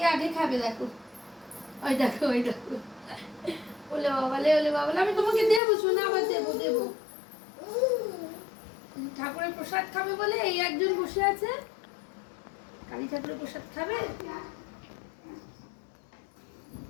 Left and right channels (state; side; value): drops out; right; at 5.6 s